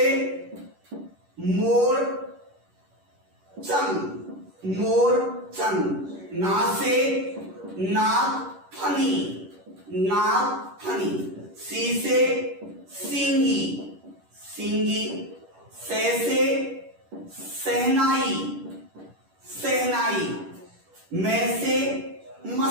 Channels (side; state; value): left; late; 10 ms